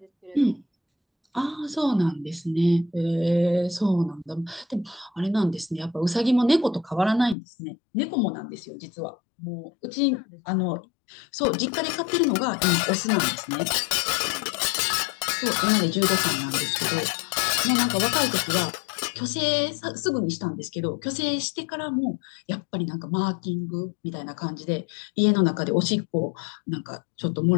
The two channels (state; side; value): drops out; right; at 7.4 s